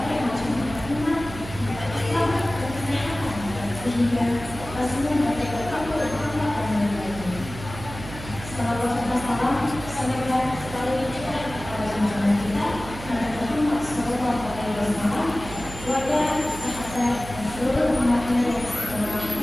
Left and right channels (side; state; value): right; noise; hum, 12 dB below the sound